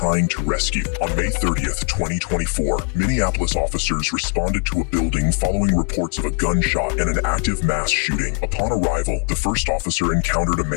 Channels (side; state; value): right; quieter; 35.6 dB